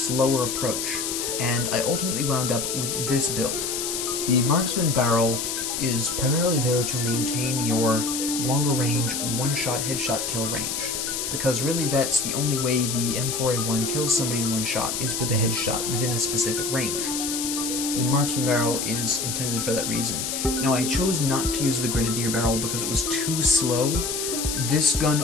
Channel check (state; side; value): noise; left; hiss, 2 dB below the sound